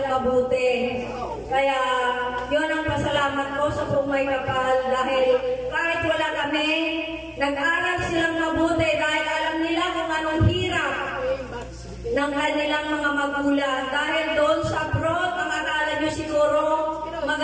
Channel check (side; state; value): both; identical; correlation 1.00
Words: mabuti. Kaya, yun ang pasalamat ko sa Pumay Kapal dahil kahit wala kami, nag-aral silang mabuti dahil alam nila kung anong hirap ng kanilang mga magulang. Dahil doon sa abroad, ang akala nyo siguro